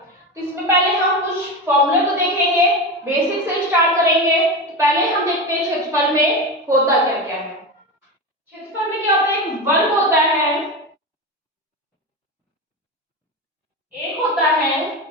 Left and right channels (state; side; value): normal; both; correlation 0.21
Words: तो इसमें पहले हम कुछ फॉर्मूले को देखेंगे, बेसिक से स्टार्ट करेंगे। तो पहले हम देखते हैं क्षेत्रफल में होता क्या क्या है। क्षेत्रफल में क्या होता है, एक वर्ग होता है, एक होता है